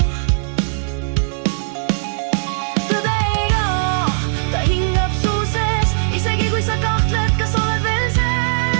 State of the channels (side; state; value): left; silent; digital silence